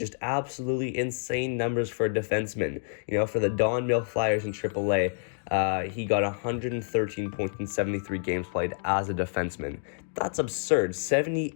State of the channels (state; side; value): silent; right; 56 dB below the other